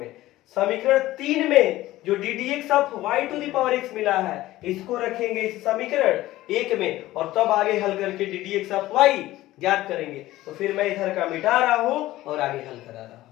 समीकरण 3 में जो d D x of Y to the power x मिला है इसको रखेंगे इस समीकरण 1 में, और तब आगे हल करके d D x of y ज्ञात करेंगे। तो फिर मैं इधर का मिटा रहा हूं और आगे हल करा रहा हूं।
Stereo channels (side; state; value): right; quieter; 16.3 dB